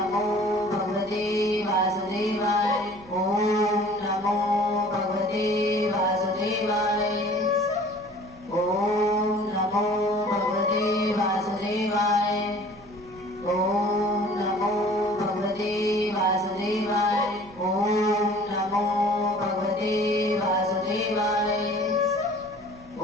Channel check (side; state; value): right; noise; hum, 25 dB below the sound